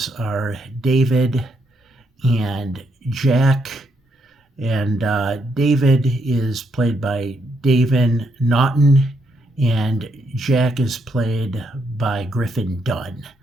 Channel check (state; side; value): normal; both; correlation 0.76